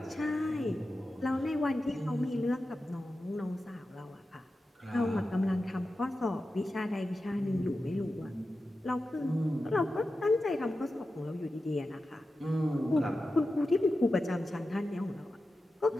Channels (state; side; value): normal; both; correlation 0.92